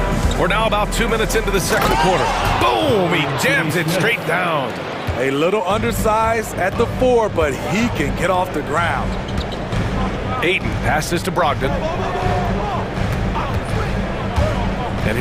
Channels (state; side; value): identical; both; correlation 1.00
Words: We're now about 2 minutes into the second quarter. Boom! He jams it straight down. A little undersized at the 4, but he can get off the ground. Ayton passes to Brogdon. And